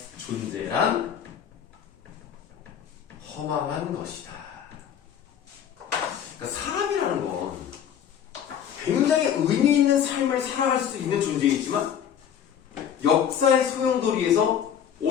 존재란 허망한 것이다. 그러니까 사람이라는 건 굉장히 의미 있는 삶을 살아갈 수 있는 존재이지만 역사의 소용돌이에서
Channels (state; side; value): quieter; right; 8.8 dB